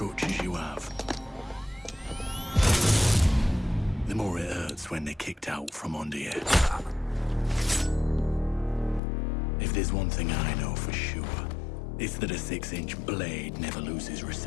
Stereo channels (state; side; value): drops out; right; at 9.0 s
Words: you have, the more it hurts when they're kicked out from under you. If there's one thing I know for sure, it's that a 6-inch blade never loses